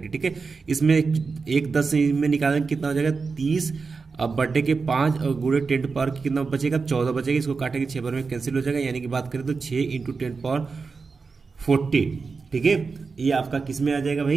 ठीक है, इसमें 1 10 में निकालेंगे कितना हो जाएगा 30। अब बर्थडे के 5 × 10⁻ कितना बचेगा, 14 बचेगा। इसको काटेंगे 6 बार में कैंसिल हो जाएगा, यानी कि बात करें तो 6 × 10⁻40। ठीक है, ये आपका किस में आ जाएगा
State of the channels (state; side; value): quieter; left; 4.7 dB